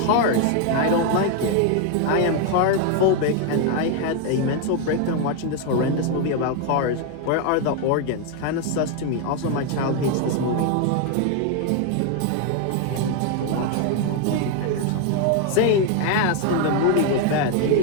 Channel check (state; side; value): different; both; correlation 0.01